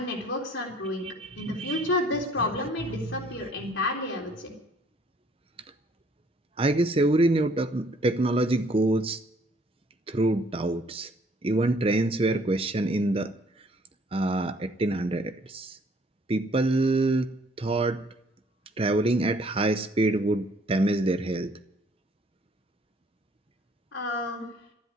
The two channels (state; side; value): normal; both; correlation 0.60